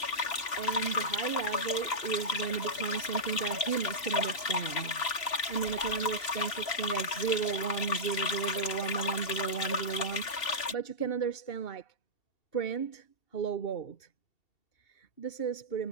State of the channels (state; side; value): late; right; 3.0 ms